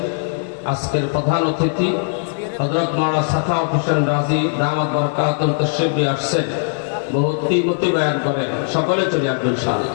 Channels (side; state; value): right; silent; digital silence